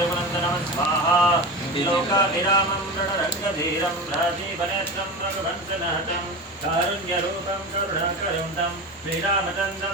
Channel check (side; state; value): both; normal; correlation 0.26